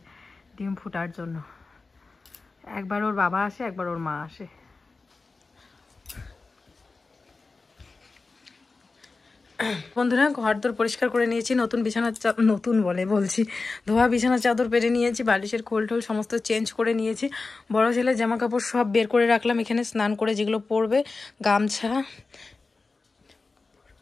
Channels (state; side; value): quieter; right; 3.9 dB